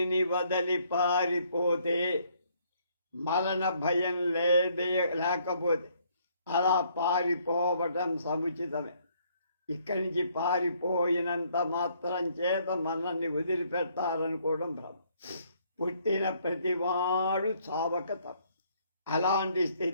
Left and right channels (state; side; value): inverted; both; correlation -0.67